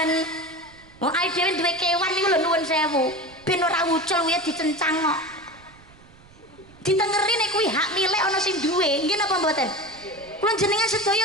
Wong ae dhewe duwe kewan niku lho nuwun sewu, ben ora ucul kuwi dicencang kok. Ditengeri nek kuwi hak milik ana sing duwe, nggih napa mboten? Kula jenengan sedaya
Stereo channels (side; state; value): right; noise; rumble, 25 dB below the sound